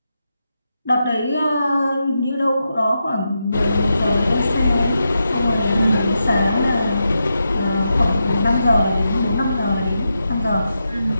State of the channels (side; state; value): both; inverted; correlation -0.87